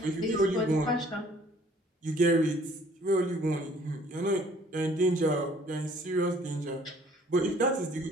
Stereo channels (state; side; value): normal; both; correlation 0.57